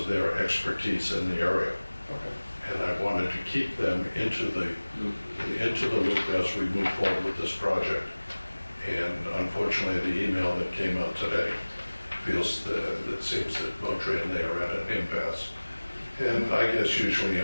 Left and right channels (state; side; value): inverted; both; correlation -1.00